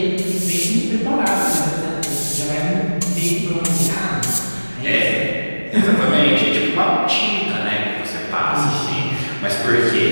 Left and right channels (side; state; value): both; inverted; correlation -1.00